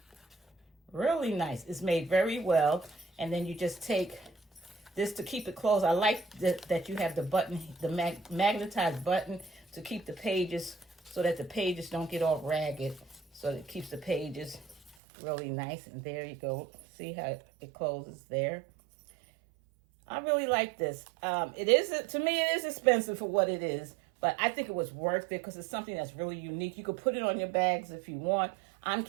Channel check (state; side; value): drops out; left; at 15.0 s